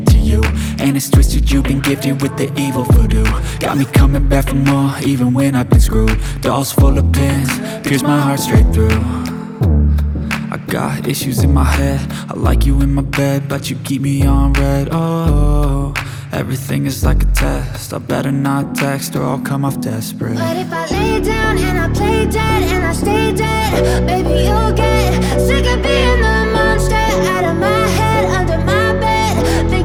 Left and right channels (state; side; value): identical; both; correlation 1.00